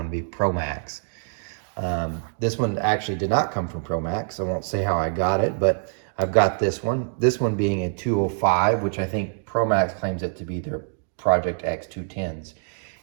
would be ProMax. This one actually did not come from ProMax. I won't say how I got it, but I've got this one. This one being a 205, which I think ProMax claims it to be their Project X 210s.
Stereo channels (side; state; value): left; silent; digital silence